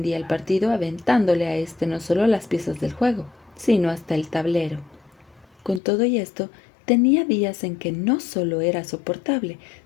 el partido aventándole a éste no solo las piezas del juego, sino hasta el tablero. Con todo y esto, tenía días en que no solo era soportable,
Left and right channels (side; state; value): right; drops out; at 5.8 s